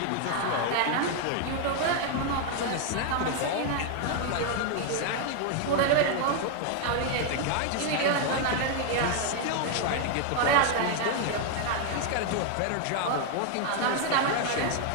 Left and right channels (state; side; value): different; both; correlation 0.00